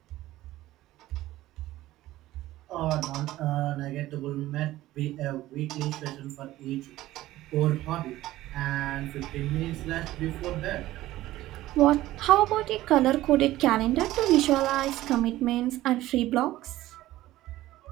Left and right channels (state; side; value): quieter; left; 15.8 dB